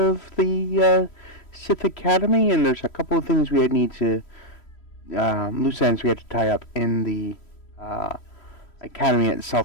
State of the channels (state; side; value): late; right; 3.1 ms